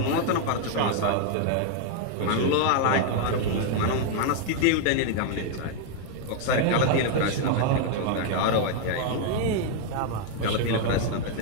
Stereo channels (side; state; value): both; different; correlation 0.00